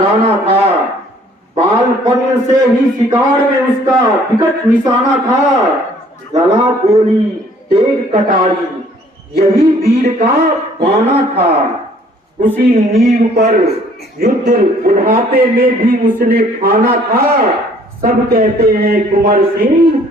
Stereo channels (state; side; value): normal; both; correlation 0.59